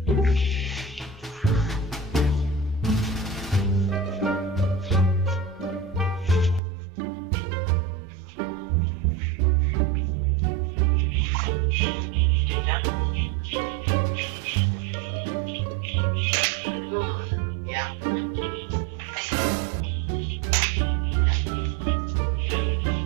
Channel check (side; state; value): left; drops out; at 6.6 s